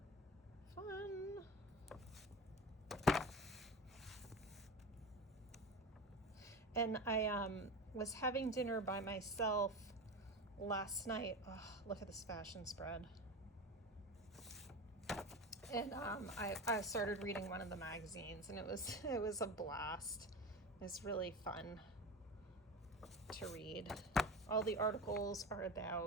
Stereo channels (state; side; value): normal; both; correlation 0.27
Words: Fun. And I was having dinner by myself last night. Oh, look at this fashion spread. And I started reading one of the magazines, and it was a blast. It was really fun to read. All the articles are